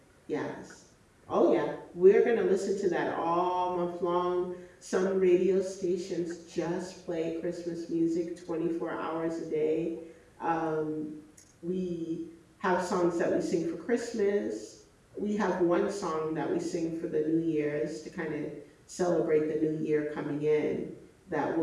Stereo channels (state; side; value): identical; both; correlation 1.00